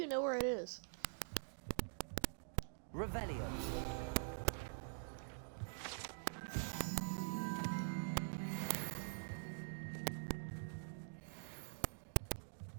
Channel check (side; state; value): left; silent; digital silence